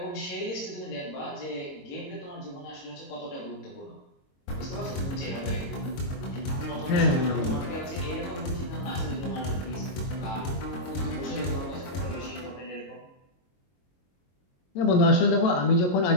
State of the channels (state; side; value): late; right; 22 ms